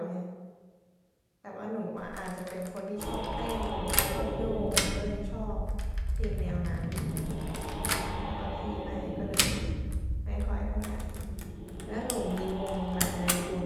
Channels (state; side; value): identical; both; correlation 1.00